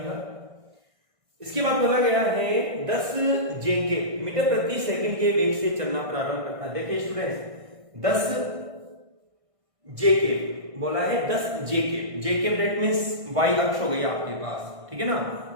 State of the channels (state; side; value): late; left; 1.6 ms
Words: इसके बाद बोला गया है 10 जेके मीटर प्रति सेकंड के वेग से चलना प्रारंभ करता है। देखिए स्टूडेंट्स, 10 जेके बोला है, 10 जेके दैट मींस y अक्ष हो गई आपके पास, ठीक है ना।